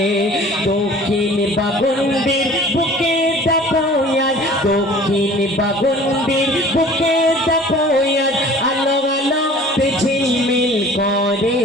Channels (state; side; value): normal; both; correlation 0.47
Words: দক্ষিণ বাগন্ডির বুকে দেখো দক্ষিণ বাগন্ডির বুকে দেখো আলো আলোতে ঝিলমিল করে